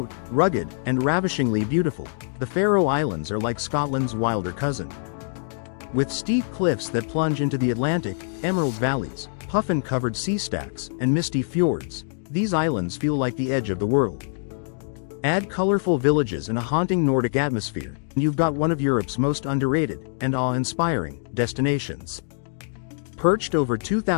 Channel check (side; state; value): right; silent; digital silence